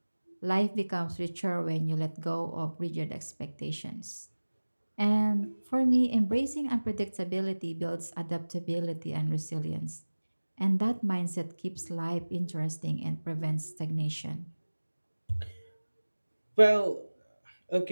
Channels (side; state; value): both; inverted; correlation -1.00